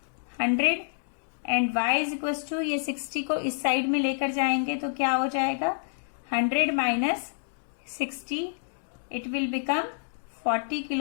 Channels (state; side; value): silent; right; digital silence